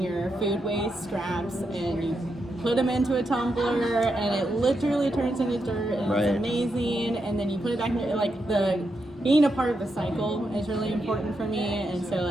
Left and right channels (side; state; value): both; normal; correlation 0.84